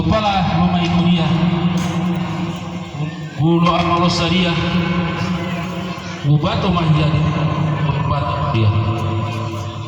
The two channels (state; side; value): identical; both; correlation 1.00